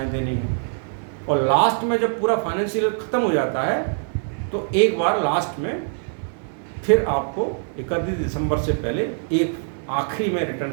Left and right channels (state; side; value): silent; left; digital silence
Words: देनी है। और लास्ट में जब पूरा फाइनेंशियल ख़त्म हो जाता है तो एक बार लास्ट में फिर आपको 31 दिसंबर से पहले एक आखिरी में